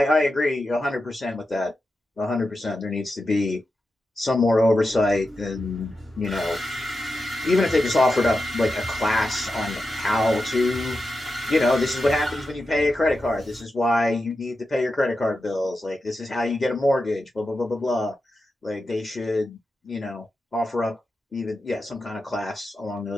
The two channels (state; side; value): normal; both; correlation 0.90